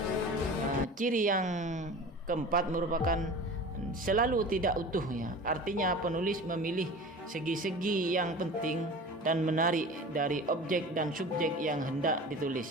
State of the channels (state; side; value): normal; both; correlation 0.37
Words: ciri yang keempat merupakan selalu tidak utuh ya. Artinya penulis memilih segi-segi yang penting dan menarik dari objek dan subjek yang hendak ditulis